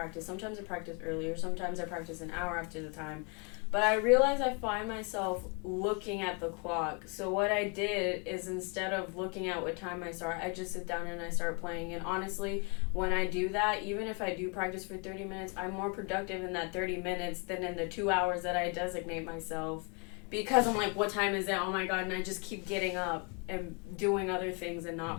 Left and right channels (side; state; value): right; quieter; 33.1 dB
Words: Sometimes I practice earlier, sometimes I practice an hour after the time. But I realize I find myself looking at the clock. So what I did is, instead of looking at what time I start, I just sit down and I start playing. And honestly, when I do that, even if I do practice for 30 minutes, I'm more productive in that 30 minutes than in the 2 hours that I designate myself. Because I'm what time is it? Oh my God, and I just keep getting up and doing other things and not